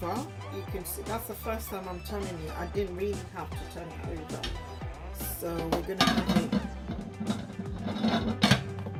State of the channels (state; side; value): identical; both; correlation 1.00